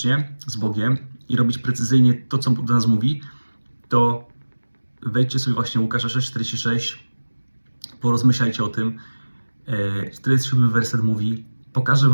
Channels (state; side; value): inverted; both; correlation -1.00